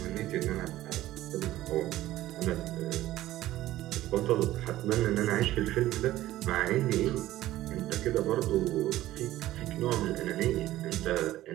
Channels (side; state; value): left; quieter; 15.1 dB